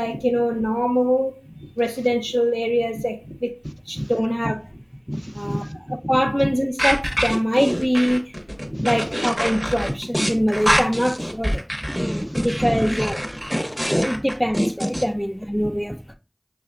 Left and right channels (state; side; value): identical; both; correlation 1.00